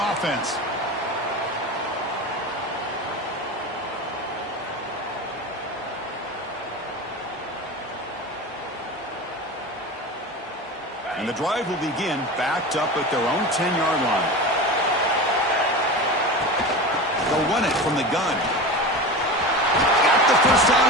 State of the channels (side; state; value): both; normal; correlation 0.28